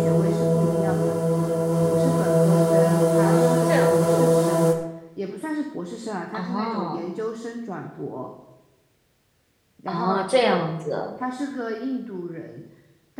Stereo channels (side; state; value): both; identical; correlation 1.00